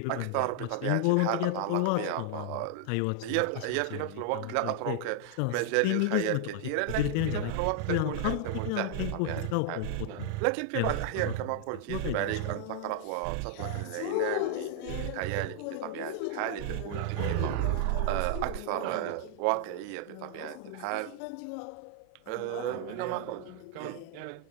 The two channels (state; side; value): different; both; correlation 0.00